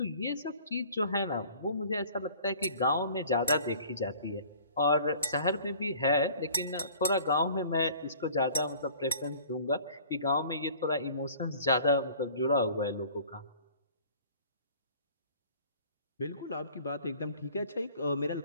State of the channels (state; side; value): inverted; both; correlation -0.49